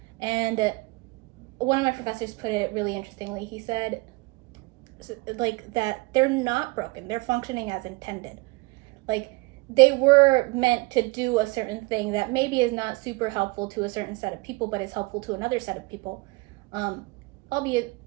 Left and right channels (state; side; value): quieter; left; 25.2 dB